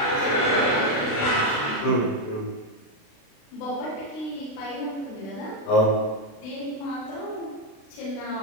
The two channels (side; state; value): right; late; 36 ms